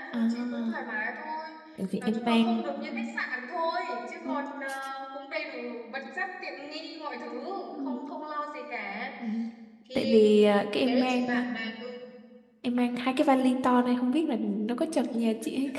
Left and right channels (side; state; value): both; identical; correlation 1.00